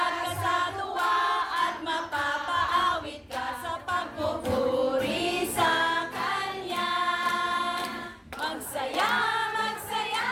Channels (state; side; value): identical; both; correlation 1.00